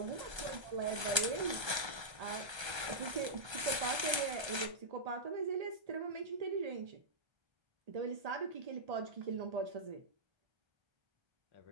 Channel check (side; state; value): left; late; 1.3 ms